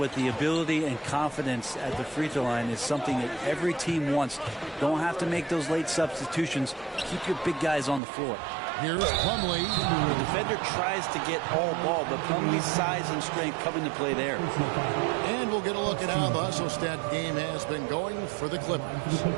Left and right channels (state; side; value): drops out; left; at 8.0 s